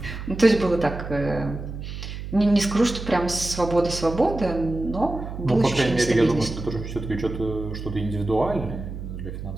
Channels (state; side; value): noise; right; hum, 8 dB below the sound